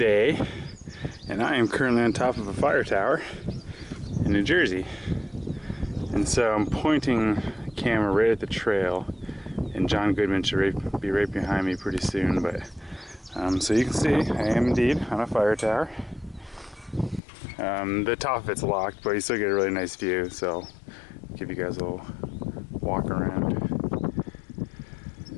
and I am currently on top of a fire tower in New Jersey. And so I'm pointing the camera right at the trail, and John Goodman should be right behind me pretty soon, but so you can see I am indeed on a fire tower. The top of it's locked, but you still get a really nice view, so I'll give you guys a little walk around.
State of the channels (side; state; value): right; drops out; at 17.2 s